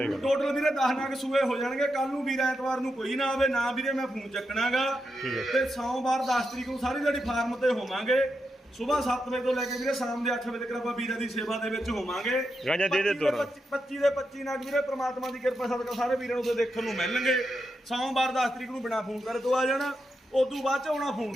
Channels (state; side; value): normal; both; correlation 0.85